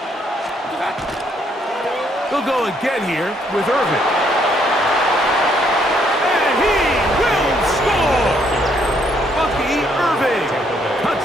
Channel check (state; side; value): normal; both; correlation 0.70